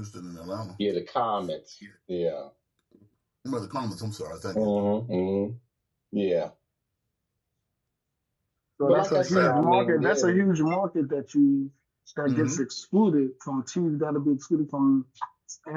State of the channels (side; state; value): both; identical; correlation 1.00